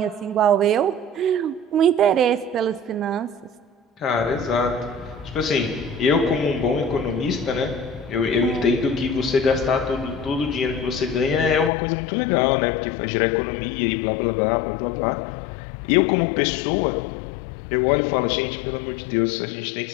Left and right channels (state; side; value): drops out; right; at 11.7 s